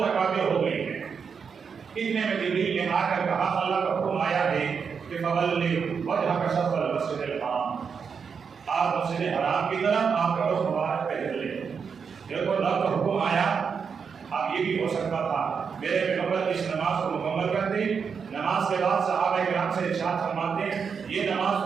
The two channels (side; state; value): left; quieter; 6.2 dB